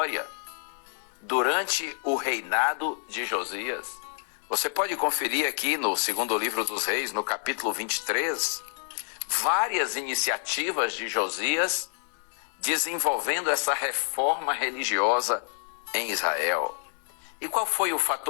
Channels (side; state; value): right; silent; digital silence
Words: durante o reinado de Josias. Você pode conferir aqui no segundo livro dos Reis, no capítulo 23, várias iniciativas de Josias desenvolvendo essa reforma religiosa em Israel. E qual foi o